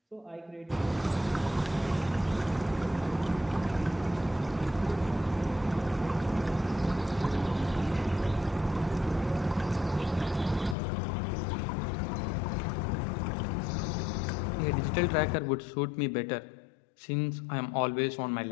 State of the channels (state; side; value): drops out; right; at 10.8 s